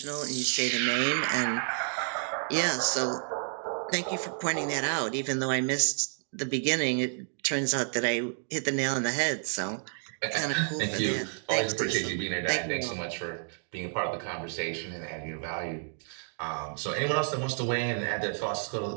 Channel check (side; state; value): left; silent; 58 dB below the other